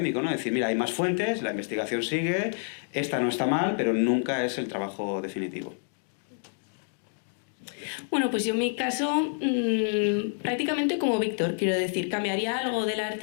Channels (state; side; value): silent; right; digital silence